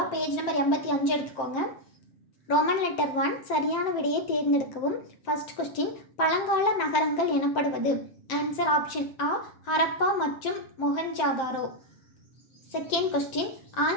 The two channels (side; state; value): right; late; 7.6 ms